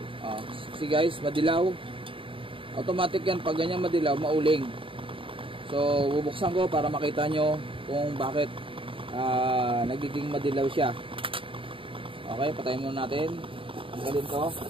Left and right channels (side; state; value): left; late; 0.25 ms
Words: See guys, madilaw. Automatic yan, pag ganyan madilaw, mauling. So, bubuksan ko para makita nyo kung bakit nagiging madilaw siya. Okay, patayin muna natin. Tanggalin to.